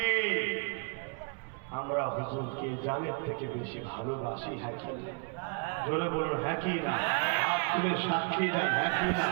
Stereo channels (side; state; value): left; quieter; 36.6 dB